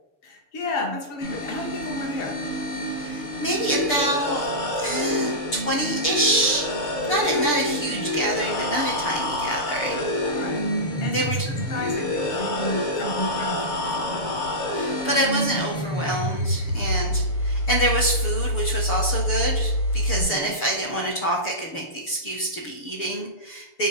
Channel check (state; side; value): late; right; 6.9 ms